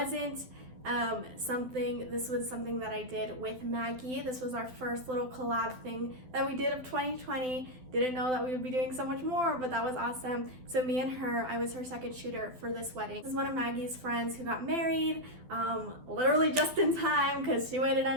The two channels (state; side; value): late; left; 12 ms